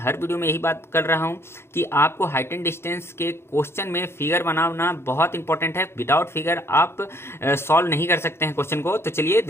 वीडियो में यही बात कर रहा हूं कि आपको हाइट एंड डिस्टेंस के क्वेश्चन में फिगर बनाना बहुत इंपॉर्टेंट है। विदाउट फिगर आप सॉल्व नहीं कर सकते हैं क्वेश्चन को। तो चलिए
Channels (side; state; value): right; late; 0.12 ms